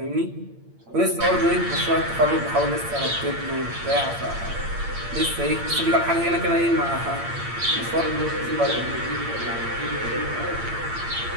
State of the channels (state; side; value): late; left; 8.7 ms